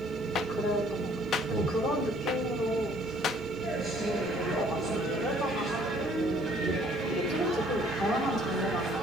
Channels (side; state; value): right; noise; rumble, 22 dB below the sound